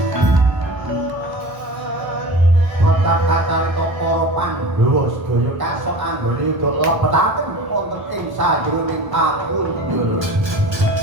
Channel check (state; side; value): late; left; 1.2 ms